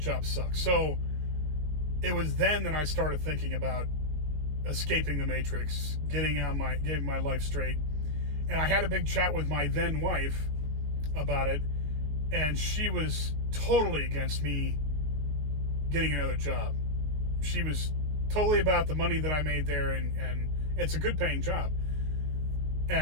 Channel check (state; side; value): late; left; 20 ms